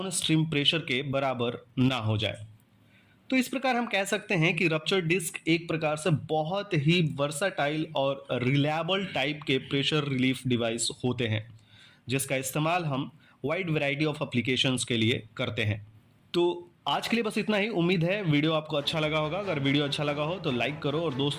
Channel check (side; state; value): both; identical; correlation 1.00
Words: प्रेशर के बराबर ना हो जाए। तो इस प्रकार हम कह सकते हैं कि रप्चर डिस्क एक प्रकार से बहुत ही वर्साटाइल और रिलायबल टाइप के प्रेशर रिलीफ डिवाइस होते हैं, जिसका इस्तेमाल हम वाइड वैरायटी ऑफ एप्लीकेशंस के लिए करते हैं। तो आज के लिए बस इतना ही। उम्मीद है वीडियो आपको अच्छा लगा होगा। अगर वीडियो अच्छा लगा हो तो लाइक करो और